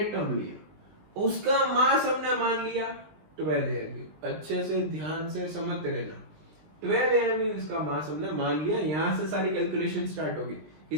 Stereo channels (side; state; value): left; late; 20 ms